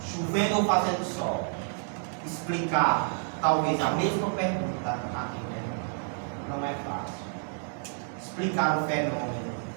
chovendo ou fazendo sol, explicar talvez a mesma pergunta a quem pergunta. Não é fácil. Explicar o fenômeno,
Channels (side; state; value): left; silent; 58 dB below the other